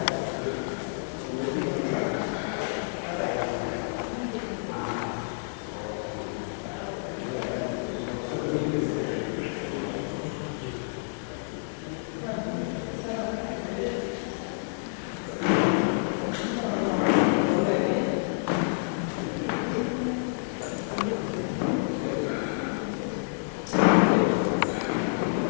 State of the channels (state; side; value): silent; right; digital silence